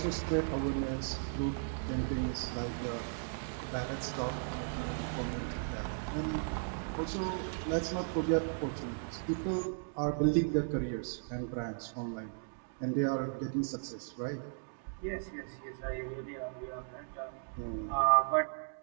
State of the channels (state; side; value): silent; left; digital silence